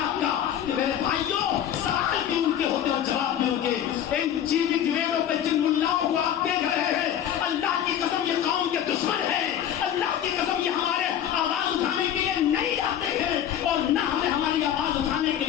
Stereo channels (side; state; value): right; quieter; 10.2 dB